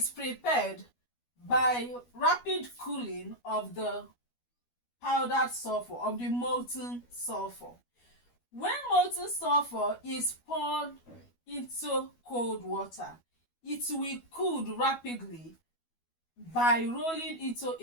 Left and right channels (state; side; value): late; right; 12 ms